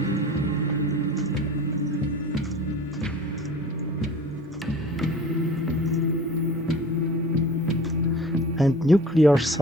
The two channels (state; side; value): normal; both; correlation 0.42